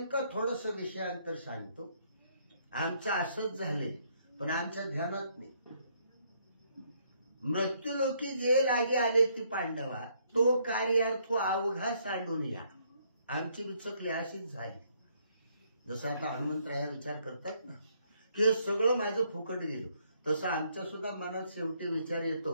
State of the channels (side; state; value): both; inverted; correlation -0.69